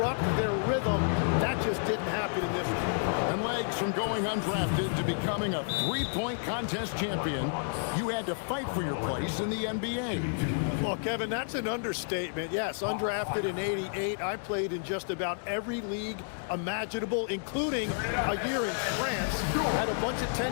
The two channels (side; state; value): right; silent; digital silence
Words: their rhythm. That just didn't happen in this one. And legs from going undrafted to becoming a 3-point contest champion, you had to fight for your place in the NBA. Well, Kevin, that's an understatement. Yes, undrafted in '88. I played in just about every league imaginable, including a year in France. Had a bunch of